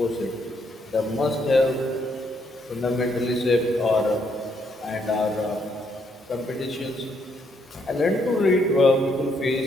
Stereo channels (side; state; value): both; normal; correlation 0.73